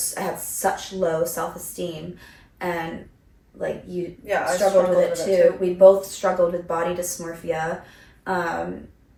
I had such low self-esteem, and like you struggled with it too. We both struggled with body dysmorphia,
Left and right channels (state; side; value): identical; both; correlation 1.00